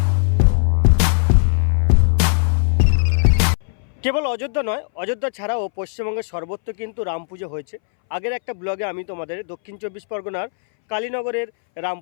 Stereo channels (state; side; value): silent; right; 63 dB below the other